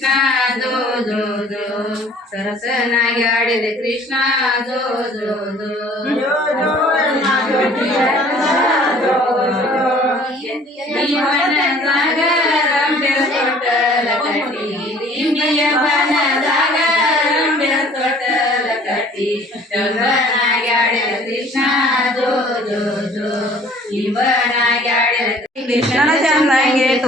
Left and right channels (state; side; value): normal; both; correlation 0.53